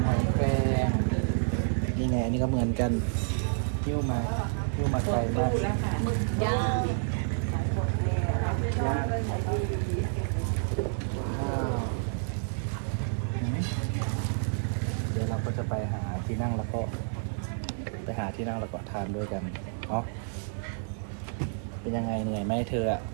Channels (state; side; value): silent; left; 58 dB below the other